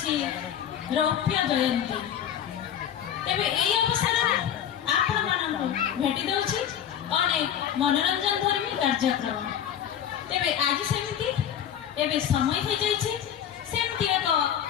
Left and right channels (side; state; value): right; quieter; 9.5 dB